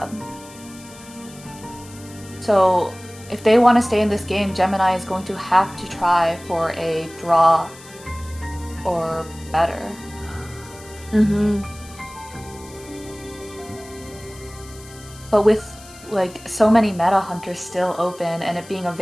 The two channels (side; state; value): left; noise; hiss, 20 dB below the sound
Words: So if they want to stay in this game, Gemini is going to have to try for a draw or better. Mm-hmm. But with like so many meta hunters still open and it being a